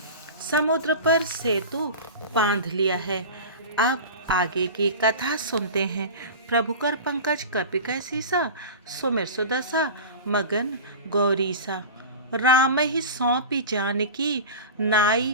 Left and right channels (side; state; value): both; inverted; correlation -0.31